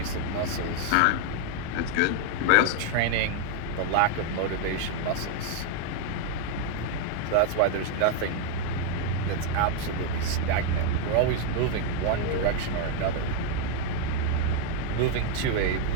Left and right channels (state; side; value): different; both; correlation 0.00